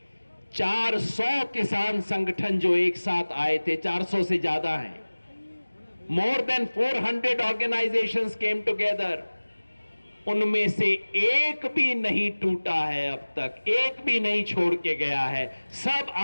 400 किसान संगठन जो एक साथ आए थे, 400 से ज्यादा हैं, more than 400 organisations came together. उनमें से एक भी नहीं टूटा है अब तक, एक भी नहीं छोड़ के गया है, सब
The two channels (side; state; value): both; inverted; correlation -1.00